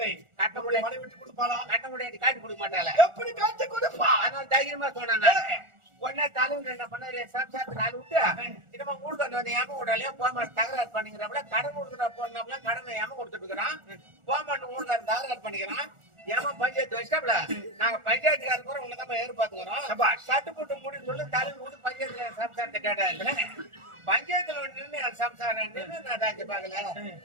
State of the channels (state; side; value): late; left; 1.4 ms